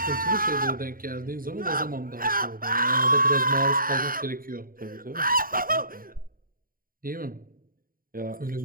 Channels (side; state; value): left; late; 0.41 ms